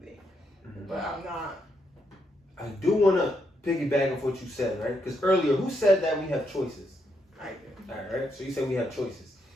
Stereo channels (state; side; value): normal; both; correlation 0.79